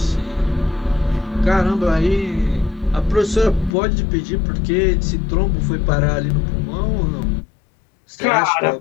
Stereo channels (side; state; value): right; drops out; at 3.8 s